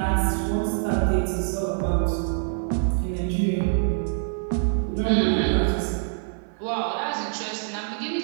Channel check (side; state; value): left; silent; 55 dB below the other